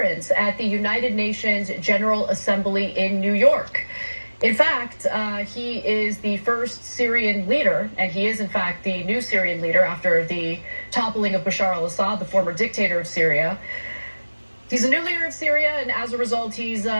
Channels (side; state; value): both; inverted; correlation -1.00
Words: at the United Nations General Assembly in New York. In fact, he is the first Syrian leader, and he is in fact the new Syrian leader after the toppling of Bashar al-Assad, the former dictator of Syria. He's a new leader of Syria, and as a result, he's